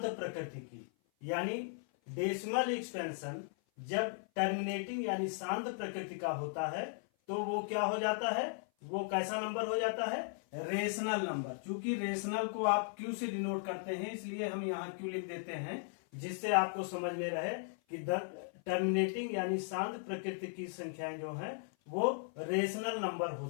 प्रकृति की। यानी डेसिमल एक्सपेंशन जब टर्मिनेटिंग यानी शांत प्रकृति का होता है तो वो क्या हो जाता है, वो कैसा नंबर हो जाता है, रेशनल नंबर। चूंकि रेशनल को आप क्यू से डिनोट करते हैं इसलिए हम यहाँ क्यू लिख देते हैं, जिससे आपको समझ में रहे कि टर्मिनेटिंग यानी शांत प्रकृति की संख्याएं जो हैं वो रेशनल नंबर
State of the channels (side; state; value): right; silent; 53 dB below the other